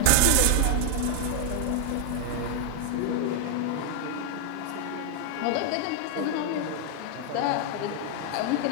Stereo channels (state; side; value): different; both; correlation 0.00